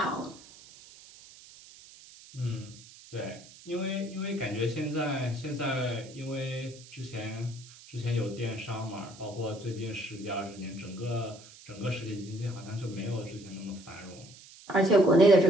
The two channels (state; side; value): noise; right; hiss, 20 dB below the sound